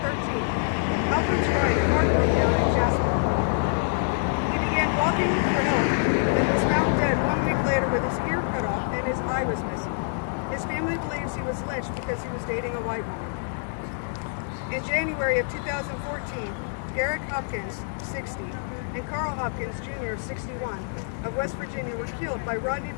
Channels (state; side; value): silent; right; 57 dB below the other